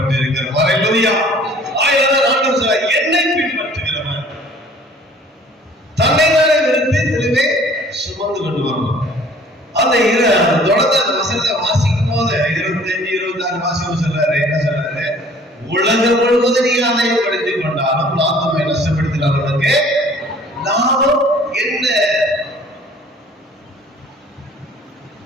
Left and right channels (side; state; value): both; normal; correlation 0.53